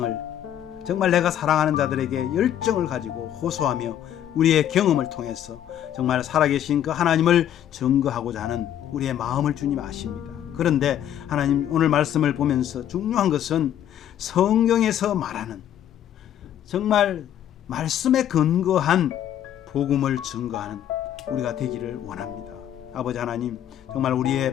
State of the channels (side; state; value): right; quieter; 10.7 dB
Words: 정말 내가 사랑하는 자들에게 열정을 가지고 호소하며 우리의 경험을 통해서 정말 살아계신 그 하나님을 증거하고자 하는 우리의 마음을 주님 아십니다. 그런데 하나님 오늘 말씀을 보면서 중요한 것은 성경에서 말하는 정말 말씀에 근거한 복음을 증거하는 우리가 되기를 원합니다. 아버지 하나님 정말